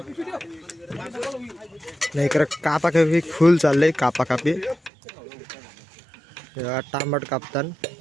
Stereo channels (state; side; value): drops out; left; at 4.9 s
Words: नाही इकडे कापा कापी फुल चाललंय. कापा कापी टांबट कापतान